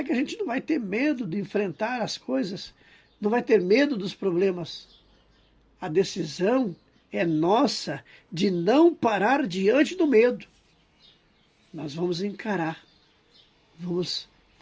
que a gente não vai ter medo de enfrentar as coisas, não vai ter medo dos problemas. A decisão é nossa de não parar diante do medo. Nós vamos encarar, vamos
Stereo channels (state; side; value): identical; both; correlation 1.00